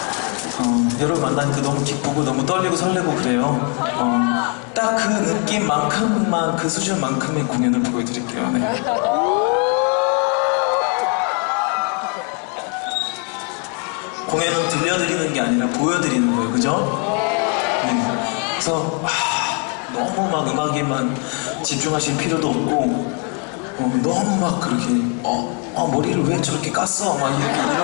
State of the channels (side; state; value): right; quieter; 37.6 dB